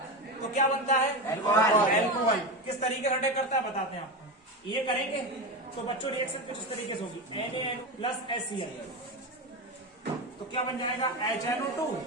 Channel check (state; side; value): normal; both; correlation 0.18